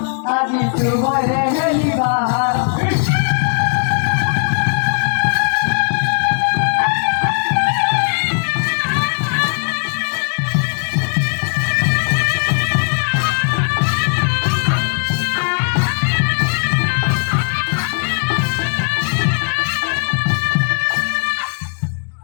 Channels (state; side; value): silent; right; 57 dB below the other